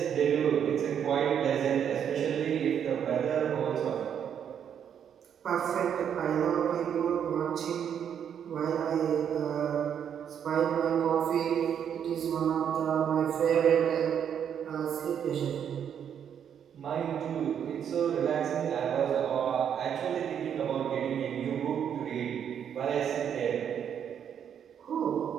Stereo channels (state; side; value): quieter; left; 8.5 dB